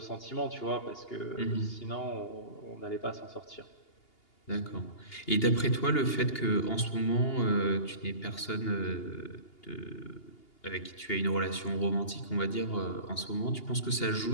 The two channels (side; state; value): right; late; 2.8 ms